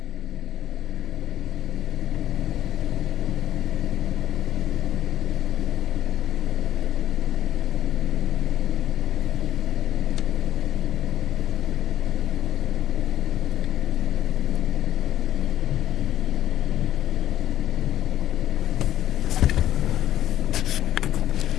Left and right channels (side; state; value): right; quieter; 12.3 dB